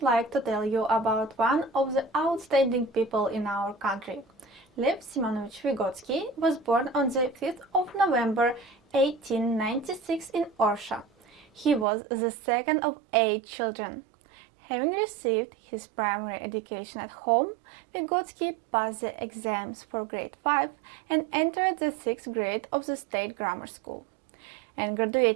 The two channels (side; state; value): left; drops out; at 11.9 s